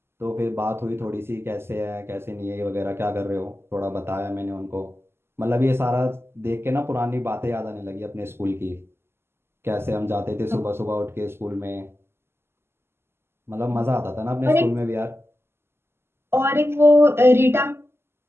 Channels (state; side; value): late; left; 0.12 ms